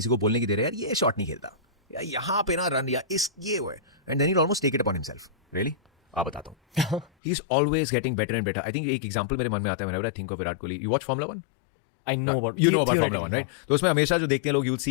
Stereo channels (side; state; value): right; drops out; at 7.1 s